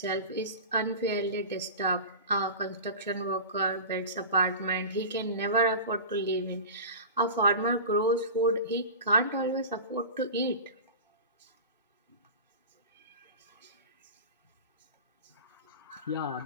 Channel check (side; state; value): both; inverted; correlation -0.32